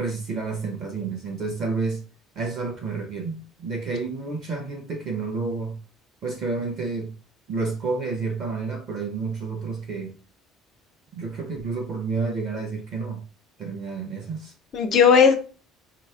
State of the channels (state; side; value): normal; both; correlation 0.37